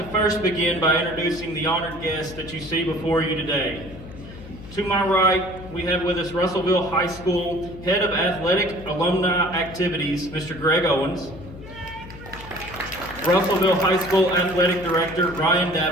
first begin by introducing the honored guests that you see before you today. To my right, we have with us Russellville High School Head of Athletic Alumni Activities, Mr. Greg Owens. Russellville High School Athletic Director, Ryan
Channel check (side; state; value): left; noise; hum, 15 dB below the sound